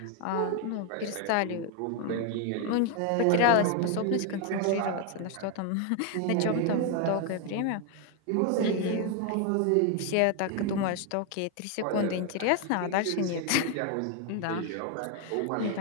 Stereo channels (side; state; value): both; different; correlation 0.01